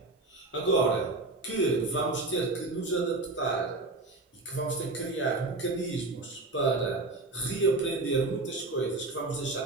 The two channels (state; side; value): quieter; left; 3.1 dB